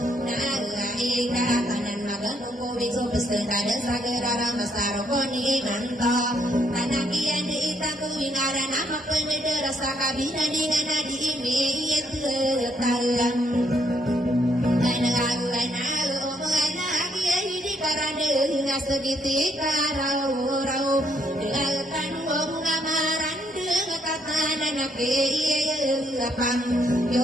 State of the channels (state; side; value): normal; both; correlation 0.72